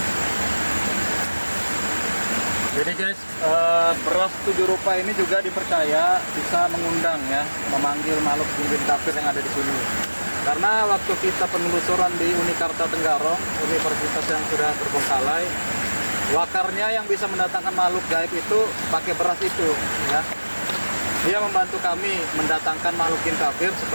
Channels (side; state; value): both; inverted; correlation -1.00